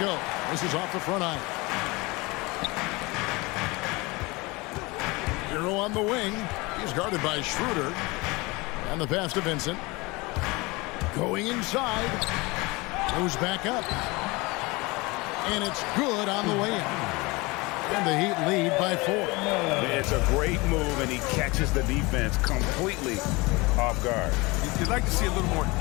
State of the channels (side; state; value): right; quieter; 24.3 dB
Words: This is off the front iron. Hero on the wing. He's guarded by Schroeder. And the pass to Vincent. Going inside. Goes back up. And it's good on the way in. And the Heat lead by 4. It's a great move, and he catches the defense completely off guard. You'd like to see a little more